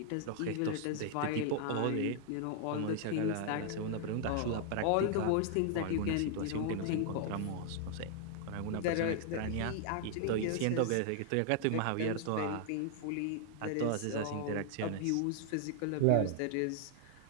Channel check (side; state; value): both; different; correlation 0.00